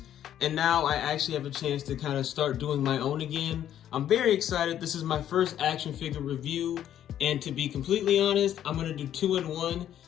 and now I actually have a chance to kind of start doing my own again. I'm very excited. This is my first action figure review, and to be completely honest, I'm going to do 2 in 1.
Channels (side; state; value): right; quieter; 10.8 dB